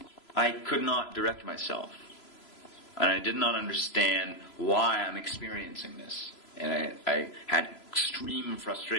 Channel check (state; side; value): late; right; 3.0 ms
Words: I could not direct myself. And I did not understand why I'm experiencing this. And I had extreme